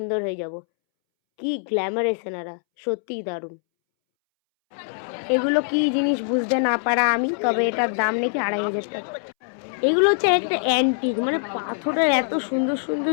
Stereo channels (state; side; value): silent; right; 63 dB below the other